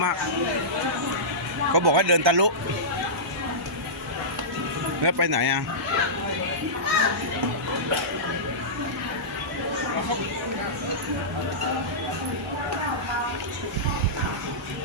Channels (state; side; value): normal; both; correlation -0.16